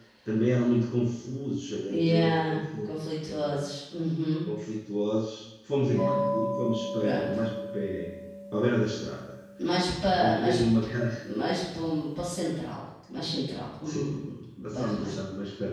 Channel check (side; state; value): both; identical; correlation 1.00